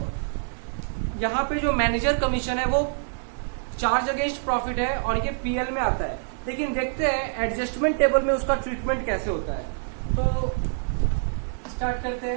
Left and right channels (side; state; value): left; silent; digital silence